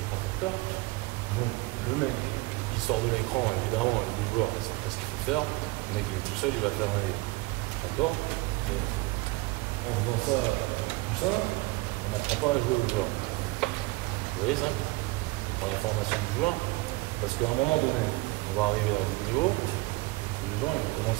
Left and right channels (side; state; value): left; quieter; 22.7 dB